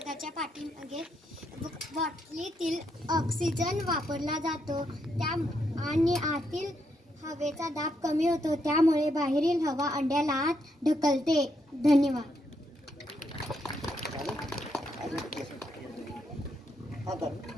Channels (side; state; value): both; normal; correlation 0.78